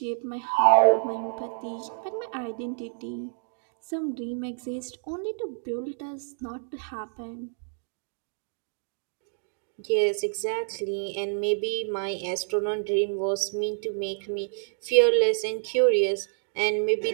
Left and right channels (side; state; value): left; silent; digital silence